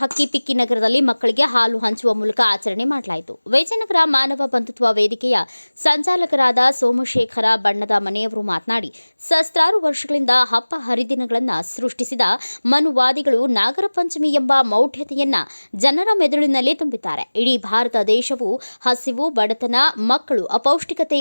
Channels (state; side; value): inverted; both; correlation -1.00